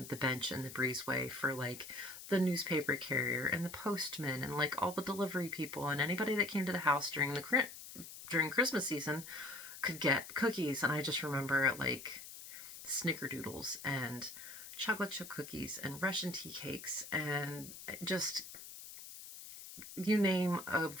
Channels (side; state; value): left; noise; hiss, 13 dB below the sound